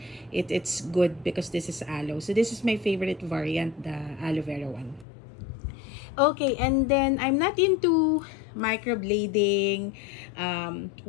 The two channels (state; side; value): drops out; right; at 5.1 s